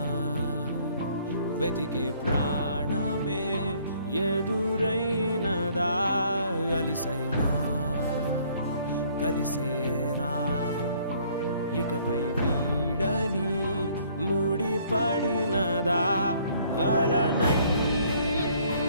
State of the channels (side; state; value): both; inverted; correlation -0.61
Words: వెతికే ప్రాణమే ఎదురైనదా అలిసైనా కలిసేనా ఇకపై వీడని ముడిపడినదా అలనై